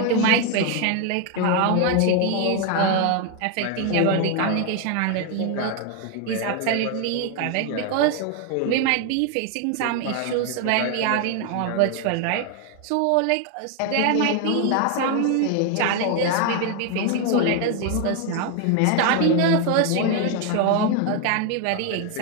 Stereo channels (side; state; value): both; different; correlation 0.01